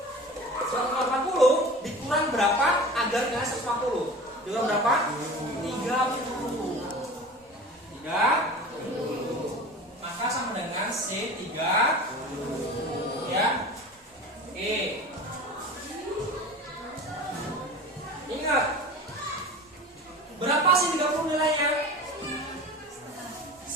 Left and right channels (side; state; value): both; normal; correlation 0.36